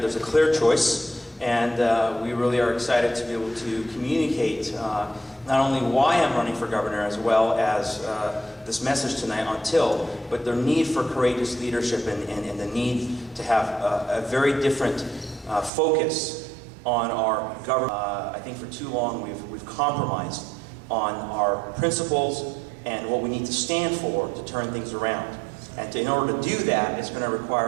a clear choice. And we really are excited to be able to communicate not only why I'm running for governor, as well as this message tonight on Till, but the need for courageous leadership and the need to have a very different focus on our government. I think for too long we've compromised on our principles and what we need to stand for to turn things around. And in order to do that, it's going to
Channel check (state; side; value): drops out; left; at 15.7 s